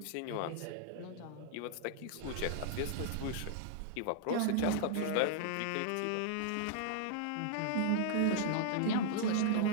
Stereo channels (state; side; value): different; both; correlation -0.01